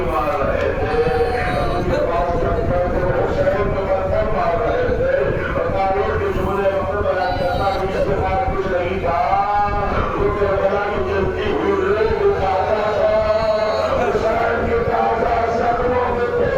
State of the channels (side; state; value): both; identical; correlation 1.00